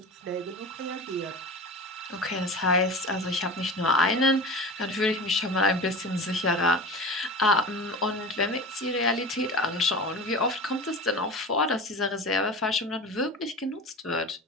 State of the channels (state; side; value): normal; both; correlation 0.32